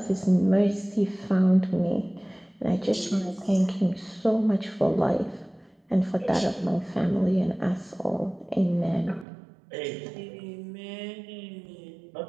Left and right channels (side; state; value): left; drops out; at 9.2 s